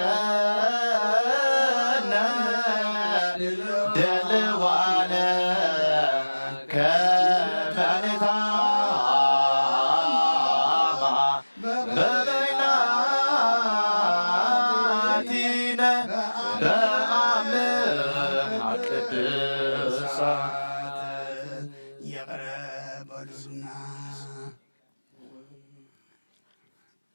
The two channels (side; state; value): both; inverted; correlation -1.00